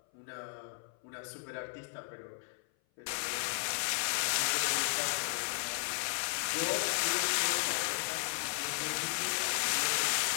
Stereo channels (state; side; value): silent; right; 55 dB below the other